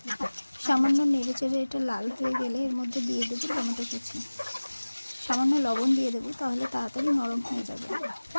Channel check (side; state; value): both; inverted; correlation -1.00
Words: সামান্য নেড়ে চেড়ে এটা লাল হয়ে গেলে এর মধ্যে দিয়ে দেবো টমেটো কুচি, সামান্য লবণ দিয়ে দেবো, তাহলে তাড়াতাড়ি নরম হয়ে যাবে।